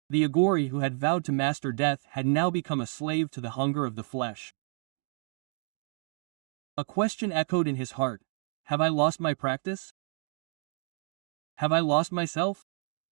The aghori who had vowed to master death had now become a slave to the hunger of the flesh. A question echoed in his heart. Have I lost my practice? Have I lost myself?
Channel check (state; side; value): silent; left; 57 dB below the other